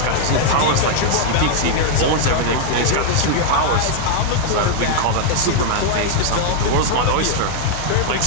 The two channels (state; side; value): different; both; correlation 0.00